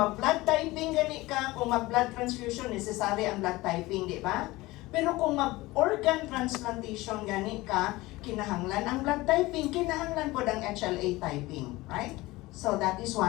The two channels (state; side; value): quieter; right; 19.9 dB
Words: typing gani ka, kung mag-blood transfusion, necessary ang blood typing, di ba? Pero kung mag-organ transplantation gani ka, kinahanglan ang blood typing, kinahanglan po ang HLA typing, right? So that is